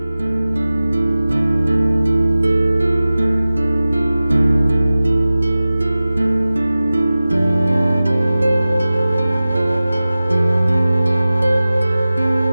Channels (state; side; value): inverted; both; correlation -0.97